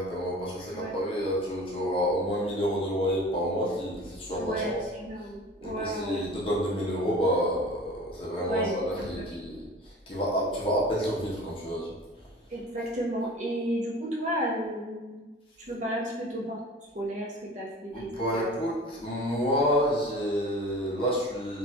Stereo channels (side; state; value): both; normal; correlation 0.41